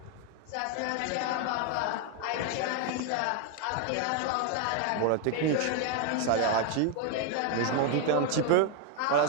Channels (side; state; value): both; different; correlation 0.01